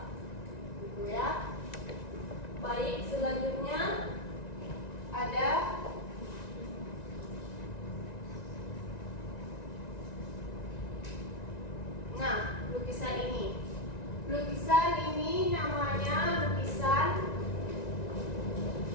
gitu ya. Baik, selanjutnya ada lukisan ini. Lukisan ini namanya lukisan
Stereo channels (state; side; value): late; right; 1.9 ms